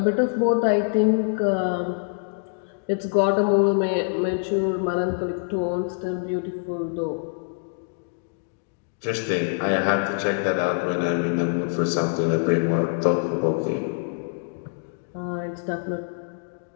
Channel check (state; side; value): silent; right; digital silence